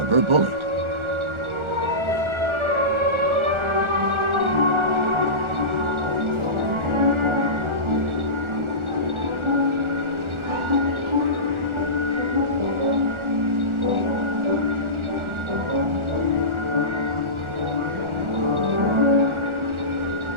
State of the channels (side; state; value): left; late; 1.4 ms